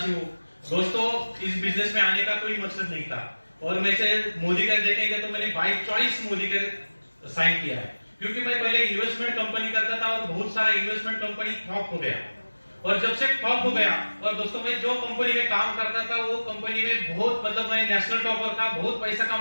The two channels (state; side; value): inverted; both; correlation -1.00